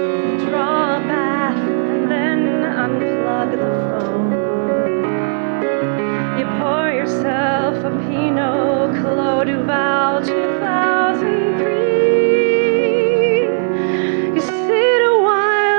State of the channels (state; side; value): silent; left; 67 dB below the other